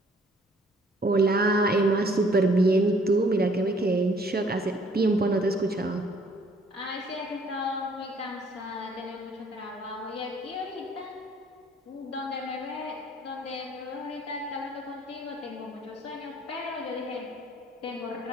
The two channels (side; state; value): both; normal; correlation 0.60